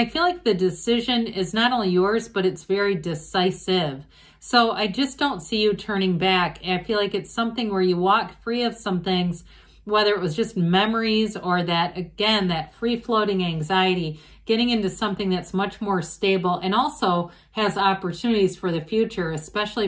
feel like the decision is not only yours, but it's very decisive. So I just don't see you turning back. I feel like it's something where you walk free of some things, whether it was just memories or that, again, that free-floating anxiety, getting into something that's much more stable and also has opportunities for the future, especially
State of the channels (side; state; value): both; identical; correlation 1.00